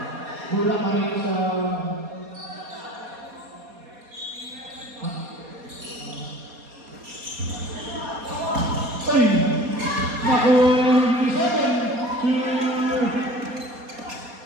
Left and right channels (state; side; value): late; left; 4.2 ms